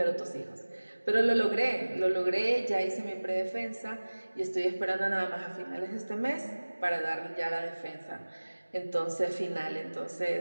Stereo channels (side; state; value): both; inverted; correlation -1.00